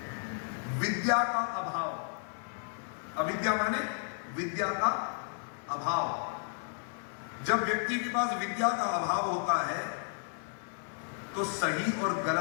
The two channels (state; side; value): silent; right; 56 dB below the other